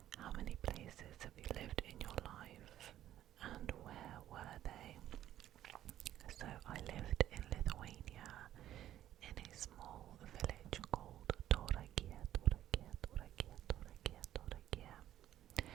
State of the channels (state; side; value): quieter; left; 12.3 dB